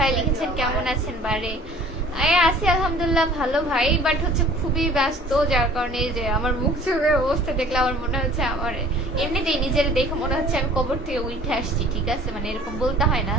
লিখেছেন কেমন আছেন বারে? আছি আলহামদুলিল্লাহ ভালো ভাই, বাট হচ্ছে খুবই ব্যস্ত, যার কারণে যে আমার মুখ চোখের অবস্থা দেখলে আমার মনে হচ্ছে, আমার এমনিতেই নিজের দেখে মনে হচ্ছে আমি কবর থেকে উঠে আসছি, ঠিক আছে, মানে এরকম বলতে হয় না।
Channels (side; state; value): both; normal; correlation 0.49